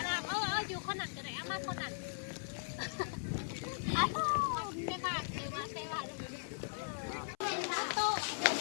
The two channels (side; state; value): right; silent; 52 dB below the other